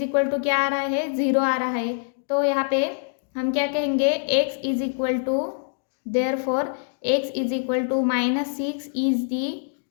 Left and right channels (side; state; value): right; silent; digital silence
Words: इक्वल टू क्या आ रहा है, 0 आ रहा है। तो यहाँ पे हम क्या कहेंगे, x is equal to, therefore x is equal to -6 is the